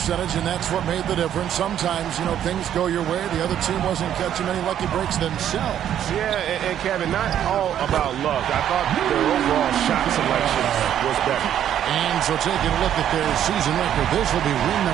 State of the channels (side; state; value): left; quieter; 10.4 dB